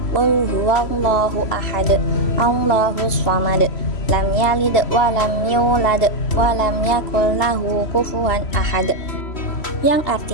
Qul huwallahu ahad, Allahus samad, lam yalid wa lam yulad wa lam yakul lahu kufuwan ahad. Yang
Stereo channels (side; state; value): right; late; 3.1 ms